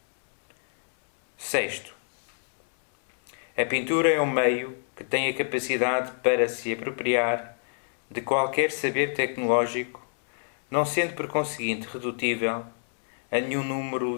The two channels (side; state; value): right; silent; digital silence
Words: Sexto, a pintura é um meio que tem a capacidade para se apropriar de qualquer saber tecnológico, não sendo por conseguinte redutível a nenhum número